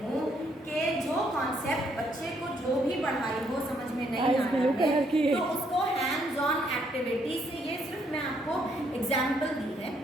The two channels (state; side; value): normal; both; correlation 0.71